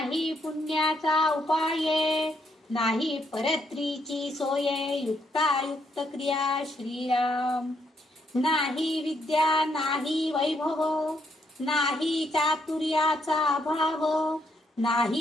पुण्याचा उपाय नाही परत्रीची सोय युक्तायुक्त क्रिया श्रीराम. नाही विद्या नाही वैभव नाही चातुर्याचा अभाव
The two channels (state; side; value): normal; both; correlation 0.75